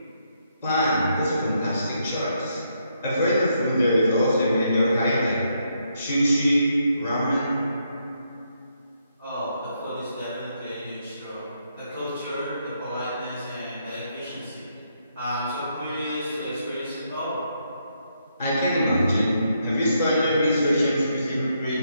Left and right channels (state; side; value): inverted; both; correlation -0.77